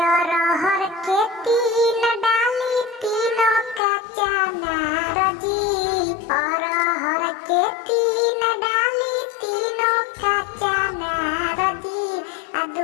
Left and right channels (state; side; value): drops out; right; at 3.8 s